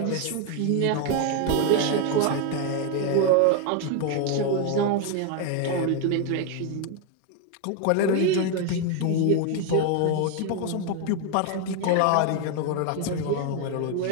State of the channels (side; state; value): both; different; correlation 0.01